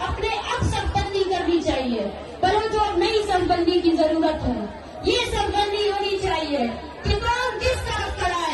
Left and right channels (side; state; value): both; identical; correlation 1.00